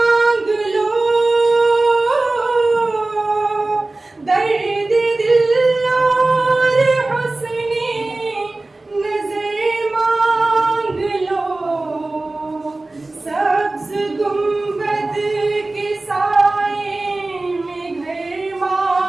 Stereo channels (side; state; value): left; quieter; 3.0 dB